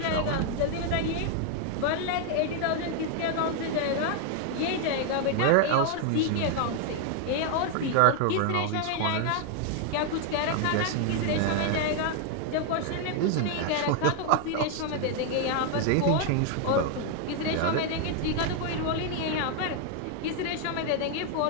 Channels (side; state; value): both; different; correlation 0.00